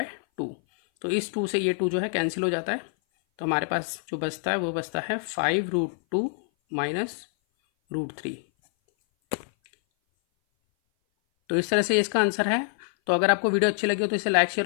तो इस 2 से ये 2 जो है कैंसिल हो जाता है। तो हमारे पास जो बचता है वो बचता है 5√2 माइनस √3। तो इस तरह से इसका आंसर है। तो अगर आपको वीडियो अच्छी लगी हो तो इसे लाइक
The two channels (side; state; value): right; silent; 58 dB below the other